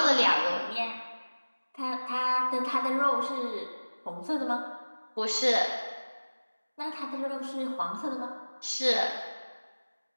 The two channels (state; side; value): inverted; both; correlation -1.00